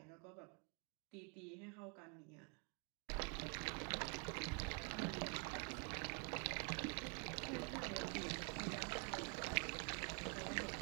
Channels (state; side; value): quieter; left; 35.8 dB